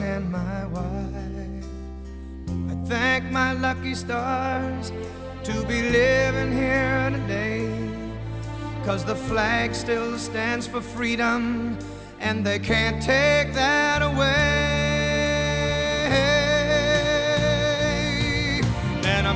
and my wife. I thank my lucky stars to be living here today, 'cause the flag still stands for freedom, and they can't take that away. And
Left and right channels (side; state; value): both; identical; correlation 1.00